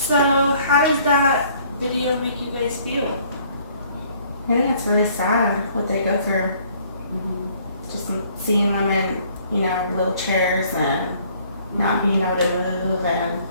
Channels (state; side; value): inverted; both; correlation -0.60